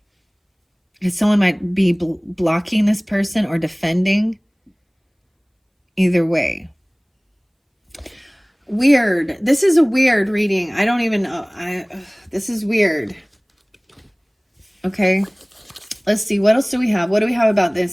Because someone might be blocking this person or defending. Either way. Weird. This is a weird reading. I don't even know. This is weird. Okay. Let's see. What else do we have? What do we have about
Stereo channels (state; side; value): identical; both; correlation 1.00